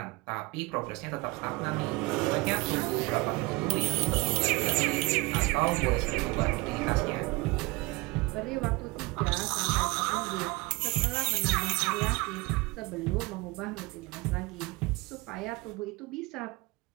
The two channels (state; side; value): quieter; left; 24.3 dB